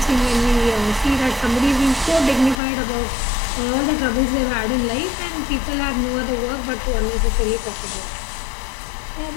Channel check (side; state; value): right; drops out; at 2.6 s